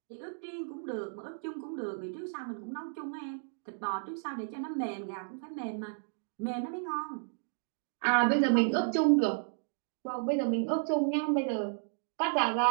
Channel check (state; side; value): silent; left; digital silence